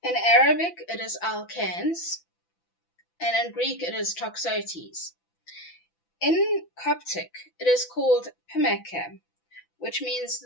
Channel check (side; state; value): right; late; 5.9 ms